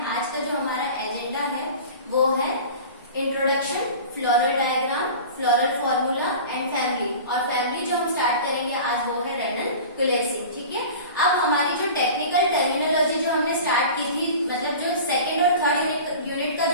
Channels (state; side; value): inverted; both; correlation -0.37